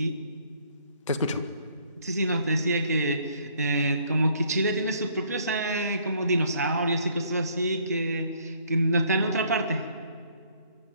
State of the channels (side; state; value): both; inverted; correlation -0.63